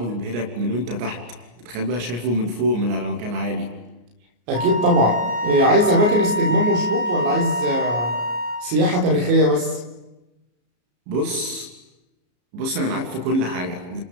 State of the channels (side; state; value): left; late; 34 ms